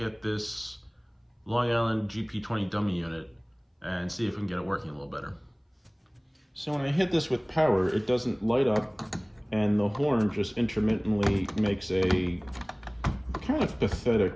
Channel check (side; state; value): both; identical; correlation 1.00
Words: at this Long Island GP20 dummy unit and see if we can get it working a little better. So when I hit this with power, it doesn't light up and the horn just intermittently makes a kind of